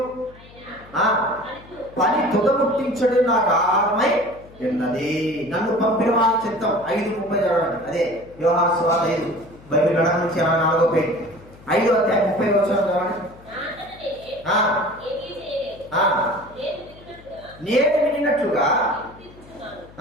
పని తుదముట్టించడు నాకు ఆహారమై ఉన్నది. నన్ను పంపిన వారి చిత్తం 5:30 చదవండి. అదే యోహాను సువార్త 5, బైబిల్ గణన నుంచి 4వ పేజీ, 5వ అధ్యాయం 30వ వచనం చదవండి. నేను వినినట్లుగా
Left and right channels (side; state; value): left; noise; hum, 22 dB below the sound